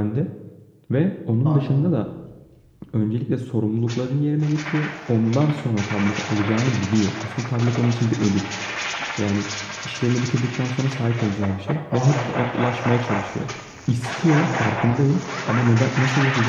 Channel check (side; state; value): both; identical; correlation 1.00